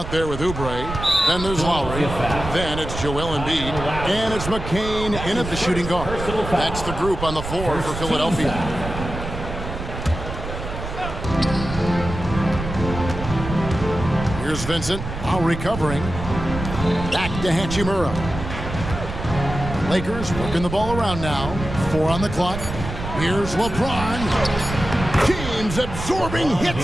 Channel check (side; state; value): right; noise; rumble, 7 dB below the sound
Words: there with Oubre. Then there's Lowry. Then it's Joel Embiid. And it's McCain in at the shooting guard. That's the group on the floor for Philadelphia. Here's Vincent, now recovering. Back to Hachimura. Lakers working the ball around now. 4 on the clock. Here's LeBron. James absorbing